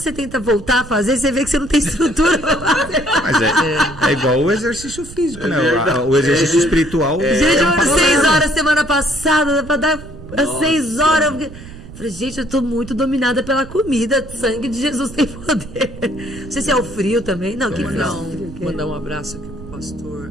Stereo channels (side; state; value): right; noise; rumble, 15 dB below the sound